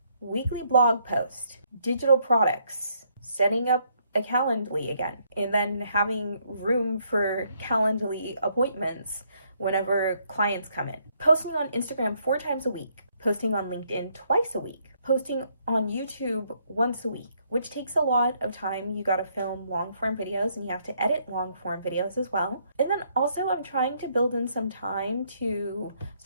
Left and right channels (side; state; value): both; inverted; correlation -0.71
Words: Weekly blog post, digital products, setting up a Calendly again, and then having room for Calendly appointments whenever clients come in. Posting on Instagram 4 times a week, posting on LinkedIn twice a week, posting on YouTube once a week, which takes a lot of time. You gotta film long form videos and you have to edit long form videos as well. And then also I'm trying to build in some time to